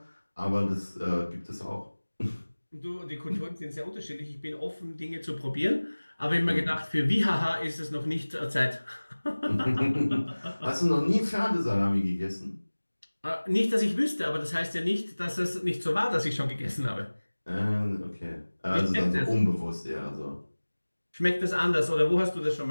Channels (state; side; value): inverted; both; correlation -1.00